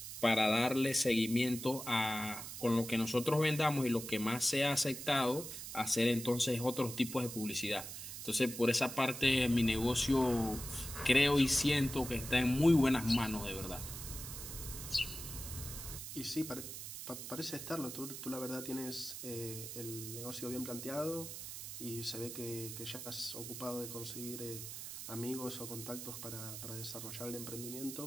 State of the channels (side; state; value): right; noise; hiss, 9 dB below the sound